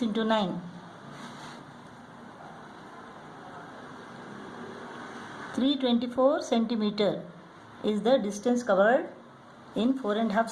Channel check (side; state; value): both; identical; correlation 1.00